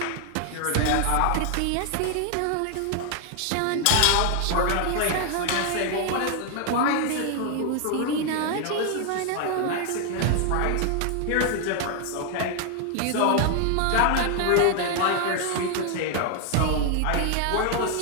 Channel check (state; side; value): different; both; correlation 0.00